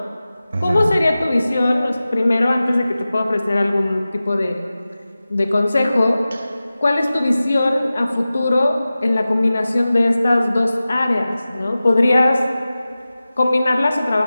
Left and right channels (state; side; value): inverted; both; correlation -0.96